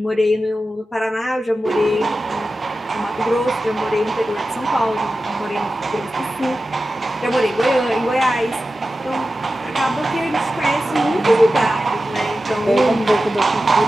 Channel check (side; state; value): both; normal; correlation 0.93